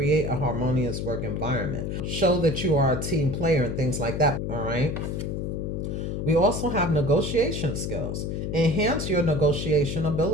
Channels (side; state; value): left; noise; hum, 3 dB below the sound